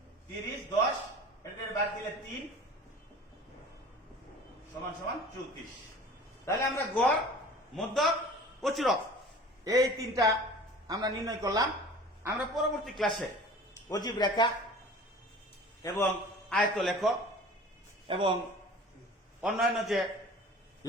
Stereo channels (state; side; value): normal; both; correlation 0.43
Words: 30 10, এটার বাদ দিলে 3 সমান সমান 34। তাহলে আমরা গড়, মধ্যক, প্রচুরক এই তিনটা আমরা নির্ণয় করলাম। আমরা পরবর্তী ক্লাসে অজীব রেখা এবং আয়ত লেখ এবং অন্যান্য যে